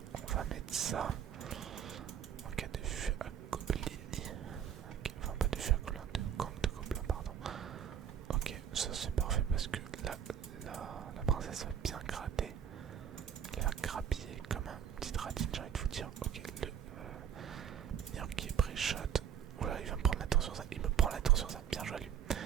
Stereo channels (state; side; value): quieter; left; 8.8 dB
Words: on va mettre ça. En cas de vue à gobelin. Ok, enfin pas de vue à gobelin, de gang de gobelin, pardon. Ok, ça c'est parfait parce que là, la princesse va bien gratter. Elle va grappiller comme un petit ratine, j'ai envie de vous dire. Ok, le mineur qui est pré-shot. Oula, il va me prendre la tour sur ça. Il me prend la tour sur ça. Bien joué à lui.